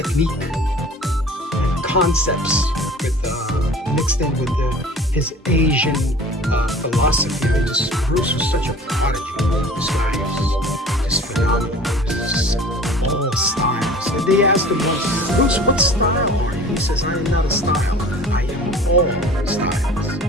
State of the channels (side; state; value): both; normal; correlation 0.44